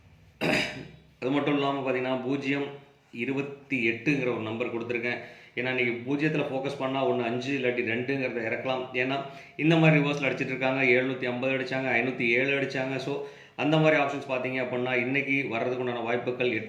அது மட்டும் இல்லாமல் பார்த்தீங்கன்னா 028ங்கிற ஒரு நம்பர் கொடுத்துருக்கேன். ஏன்னா நீங்கள் 0த்தில் ஃபோக்கஸ் பண்ணால் 1 5 இல்லாட்டி 2ங்கிறத இறக்கலாம். ஏன்னா இந்த மாதிரி ரிவர்ஸில் அடிச்சிட்டு இருக்காங்க. 750 அடித்தாங்க, 507 அடித்தாங்க. ஸோ அந்த மாதிரி ஆப்ஷன்ஸ் பார்த்தீங்க அப்படின்னா இன்றைக்கி வர்றதுக்கு உண்டான வாய்ப்புகள்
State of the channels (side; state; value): both; identical; correlation 1.00